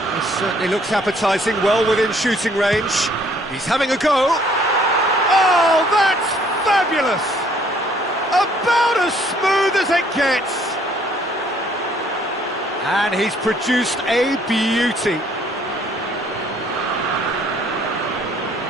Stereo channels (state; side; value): normal; both; correlation 0.62